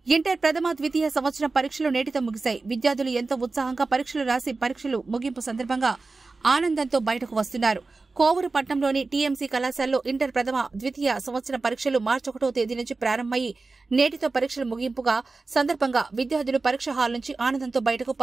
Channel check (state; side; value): quieter; left; 3.8 dB